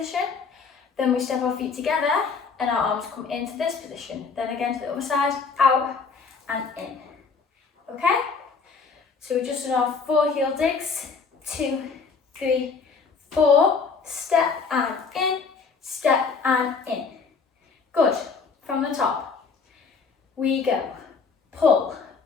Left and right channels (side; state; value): right; quieter; 5.1 dB